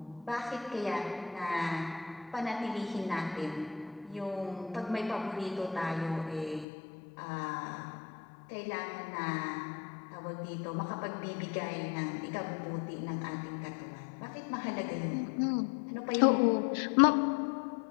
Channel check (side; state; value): right; drops out; at 6.7 s